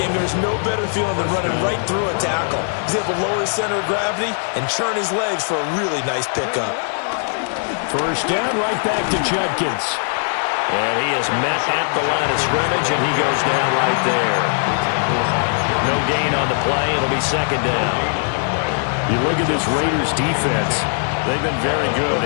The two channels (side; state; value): right; silent; 66 dB below the other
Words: there's no better feeling than running right through a tackle. He's able to lower his center of gravity and churn his legs for a really nice pickup. First down, right back to Judkins. And he is met at the line of scrimmage, and he goes down right there. No gain on the play. It'll be second down. You look at this Raiders defense. They've been very good